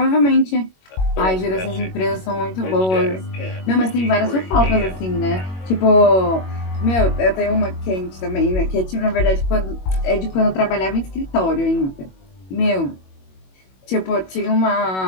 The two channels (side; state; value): right; late; 21 ms